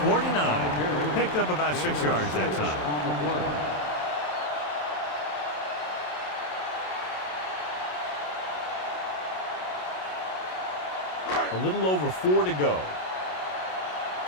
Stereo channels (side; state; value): right; late; 27 ms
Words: 49. Picked up about 6 yards that time. A little over 4 to go.